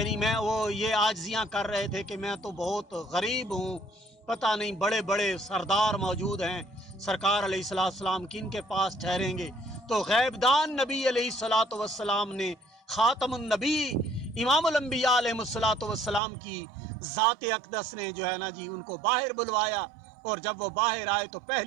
मैं वो ये आजिज़ियाँ कर रहे थे कि मैं तो बहुत गरीब हूँ, पता नहीं बड़े बड़े सरदार मौजूद हैं, सरकार अलैहिस्सलातु वस्सलाम किन के पास ठहरेंगे। तो गैबदान नबी अलैहिस्सलातु वस्सलाम ने ख़ातमुन नबी इमामुल अंबिया अलैहिस्सलातु वस्सलाम की ज़ात अक़दस ने जो है ना जी उनको बाहर बुलवाया। और जब वो बाहर आए तो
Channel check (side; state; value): left; drops out; at 16.2 s